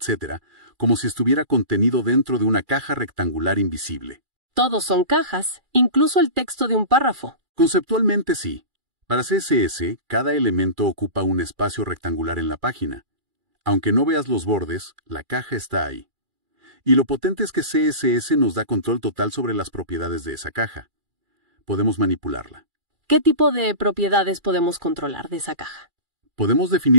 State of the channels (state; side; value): late; left; 2.4 ms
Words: como si estuviera contenido dentro de una caja rectangular invisible. Todos son cajas, incluso el texto de un párrafo. Conceptualmente sí. Para CSS, cada elemento ocupa un espacio rectangular en la página. Aunque no veas los bordes, la caja está ahí. Y lo potente es que CSS nos da control total sobre las propiedades de esa caja. Podemos manipularla. ¿Qué tipo de propiedades podemos controlar de esa caja? Podemos